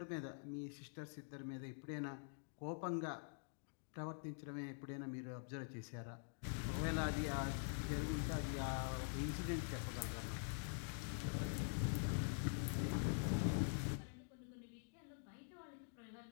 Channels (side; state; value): right; silent; digital silence